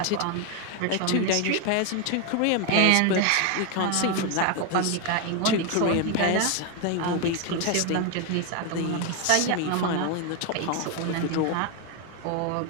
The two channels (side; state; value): both; different; correlation 0.01